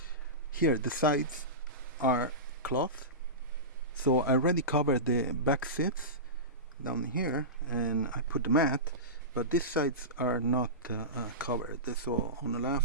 here the sides are cloth. So I already covered the back seats down here and I put the mat, but these sides are not covered. So on the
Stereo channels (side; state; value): both; normal; correlation -0.20